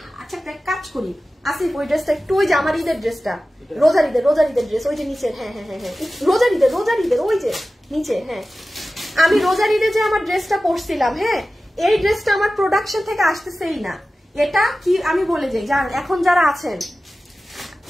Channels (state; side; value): normal; both; correlation 0.95